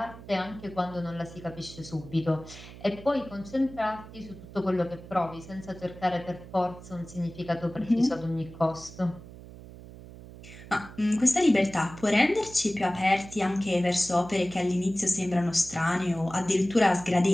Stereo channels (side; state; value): right; noise; hum, 16 dB below the sound